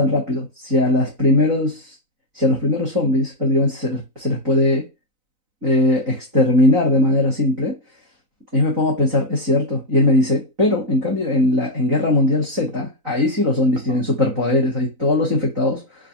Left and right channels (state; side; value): late; left; 4.0 ms